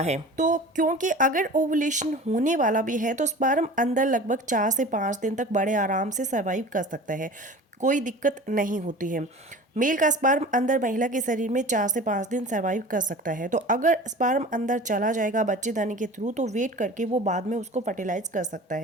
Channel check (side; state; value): both; normal; correlation 0.39